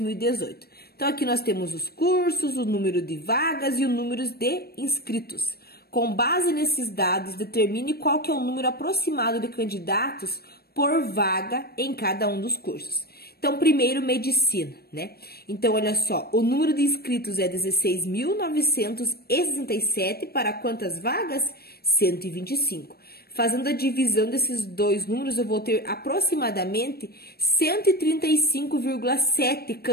Então, aqui nós temos os cursos, o número de vagas e o número de inscritos. Com base nesses dados, determine qual que é o número aproximado de candidatos por vaga em cada um dos cursos. Então, primeiro, medicina, né? Então, olha só, o número de inscritos é 16.967 para quantas vagas? 125. Fazendo a divisão desses dois números, eu vou ter aproximadamente 135,7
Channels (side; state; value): right; late; 0.46 ms